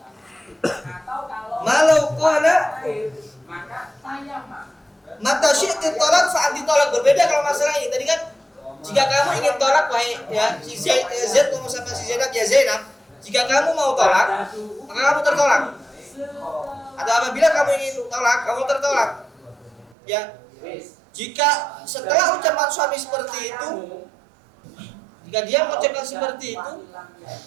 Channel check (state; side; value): drops out; left; at 20.0 s